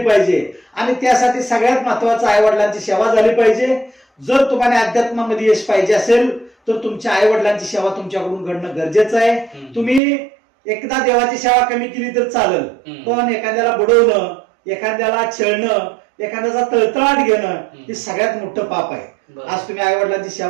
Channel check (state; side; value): drops out; left; at 10.0 s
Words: पाहिजे आणि त्यासाठी सगळ्यात महत्वाचं आई वडिलांची सेवा झाली पाहिजे. जर तुम्हाला अध्यात्मामध्ये यश पाहिजे असेल तर तुमच्या आई वडिलांची सेवा तुमच्याकडून घडणं गरजेचं आहे. तुम्ही एकदा देवाची सेवा कमी केली तर चालेल, पण एखाद्याला बुडवणं, एखाद्याला छळणं, एखाद्याचा तळतळाट घेणं हे सगळ्यात मोठं पाप आहे. आज तुम्ही आई वडिलांची